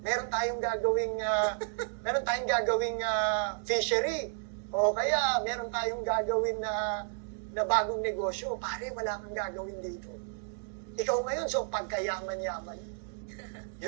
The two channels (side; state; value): left; silent; 56 dB below the other